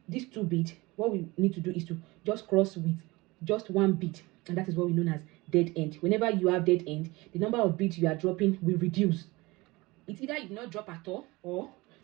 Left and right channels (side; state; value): left; quieter; 22.3 dB